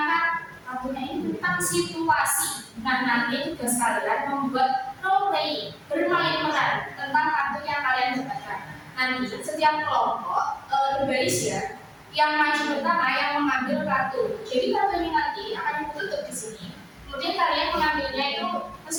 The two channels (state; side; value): identical; both; correlation 1.00